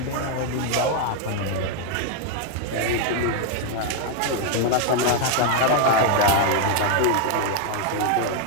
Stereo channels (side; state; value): both; different; correlation 0.00